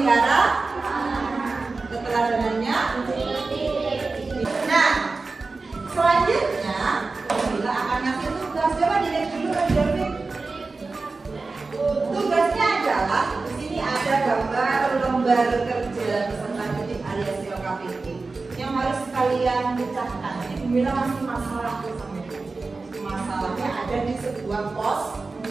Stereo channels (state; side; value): quieter; left; 3.8 dB